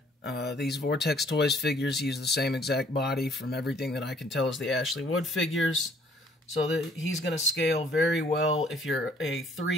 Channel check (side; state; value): both; normal; correlation 0.60